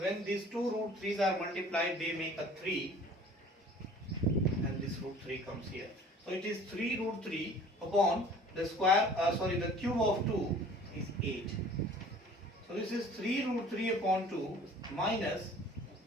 these two root 3's are multiplied, they make a 3, and this root 3 comes here. So it is 3 root 3 upon the square, the cube of 2 is 8. So this is 3 root 3 upon 2 minus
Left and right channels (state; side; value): normal; both; correlation 0.49